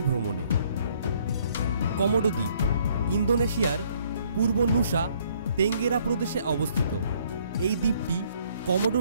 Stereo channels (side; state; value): both; inverted; correlation -0.64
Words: ভ্রমণে। কমোডো দ্বীপ ইন্দোনেশিয়ার পূর্ব নুসা তেঙ্গেরা প্রদেশে অবস্থিত। এই দ্বীপটি কমোডো